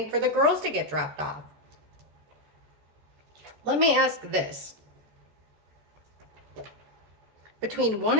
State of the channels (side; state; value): left; late; 13 ms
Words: for the girls to get dropped off. Let me ask this. Between 1